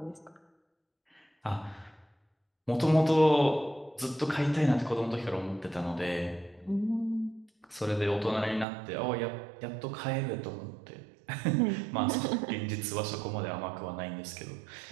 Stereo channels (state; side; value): drops out; left; at 8.7 s